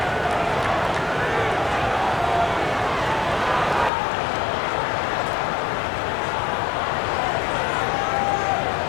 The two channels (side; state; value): right; drops out; at 3.9 s